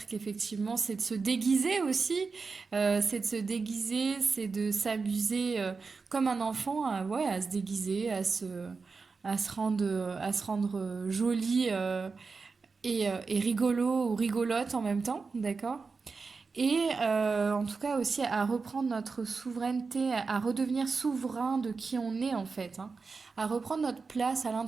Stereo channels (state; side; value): quieter; left; 4.6 dB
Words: qu'effectivement c'est de se déguiser aussi, c'est de se déguiser, c'est de s'amuser comme un enfant, ouais, à se déguiser, à se rendre joli et rigolo ou rigolote en même temps, d'accord? Et en tout cas aussi à reprendre notre souveraineté, à redevenir souverain de qui on est en fait, hein, à reprendre notre place à